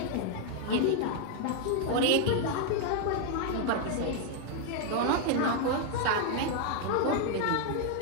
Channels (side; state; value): both; different; correlation 0.00